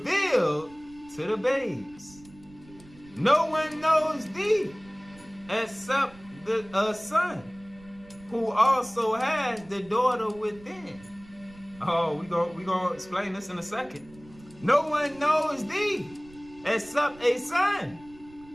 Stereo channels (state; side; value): noise; right; rumble, 23 dB below the sound